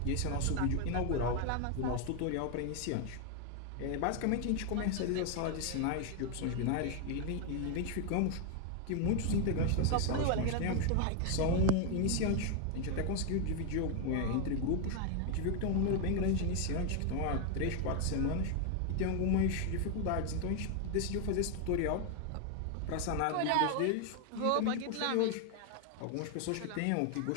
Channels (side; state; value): both; different; correlation 0.01